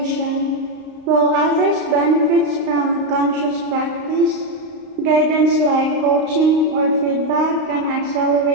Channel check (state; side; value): late; left; 33 ms